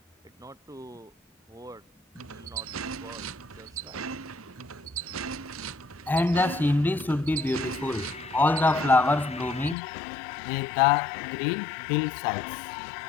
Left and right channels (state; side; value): drops out; right; at 9.8 s